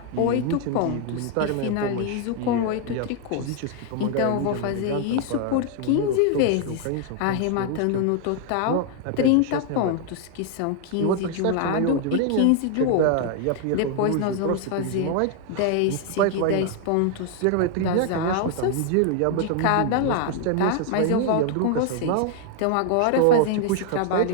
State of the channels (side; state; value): both; different; correlation 0.00